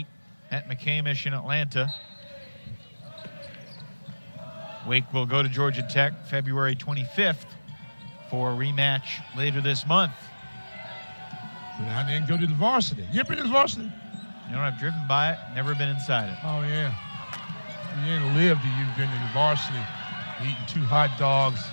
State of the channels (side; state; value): both; inverted; correlation -1.00